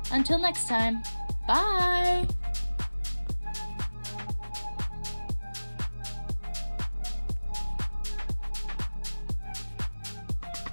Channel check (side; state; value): both; inverted; correlation -1.00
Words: Until next time, bye!